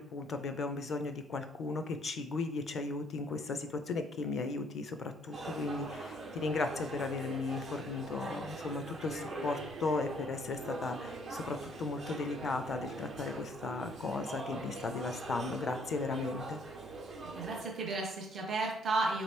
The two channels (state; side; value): normal; both; correlation 0.65